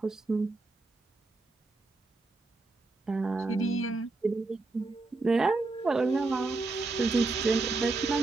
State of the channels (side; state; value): left; quieter; 3.5 dB